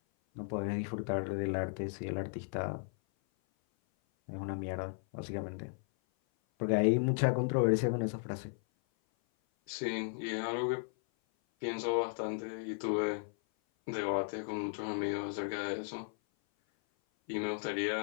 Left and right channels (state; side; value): silent; right; 54 dB below the other